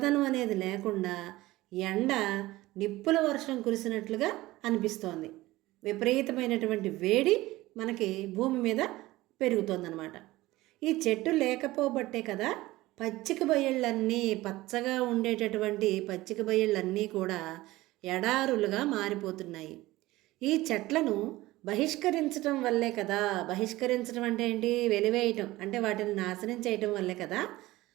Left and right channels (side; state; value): left; quieter; 18.2 dB